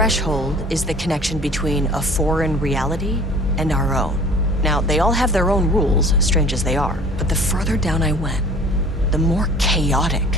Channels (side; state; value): both; normal; correlation 0.47